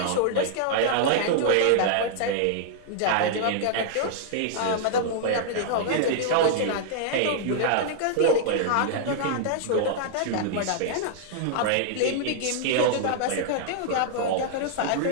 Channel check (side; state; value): both; different; correlation -0.01